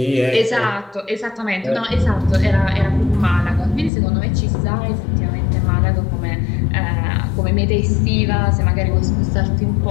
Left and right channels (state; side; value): drops out; right; at 3.9 s